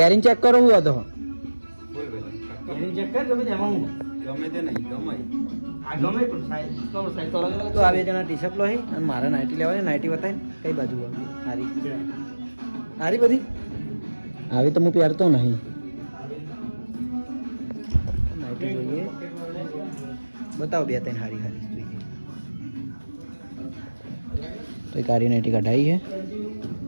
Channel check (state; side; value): inverted; both; correlation -1.00